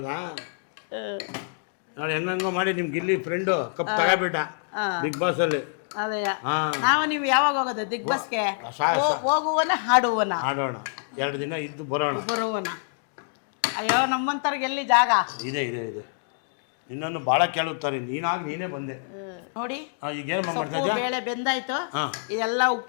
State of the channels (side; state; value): right; silent; digital silence